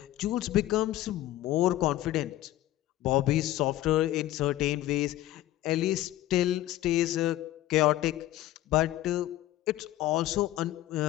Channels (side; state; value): right; quieter; 14.7 dB